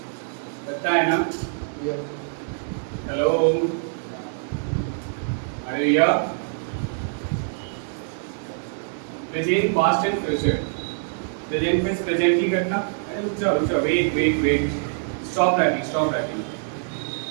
पता है ना? हेलो, अरे यार, present, past and future. Present means presently घटना। अरे रुक जाओ, wait, stop writing.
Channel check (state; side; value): silent; left; digital silence